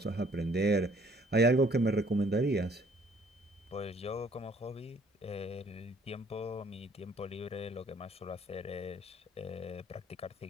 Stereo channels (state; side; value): normal; both; correlation 0.60